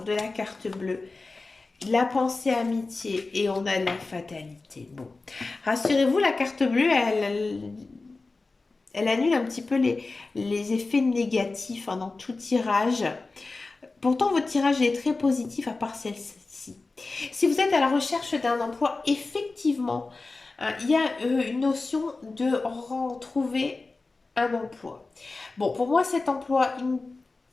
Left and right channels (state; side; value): quieter; right; 3.6 dB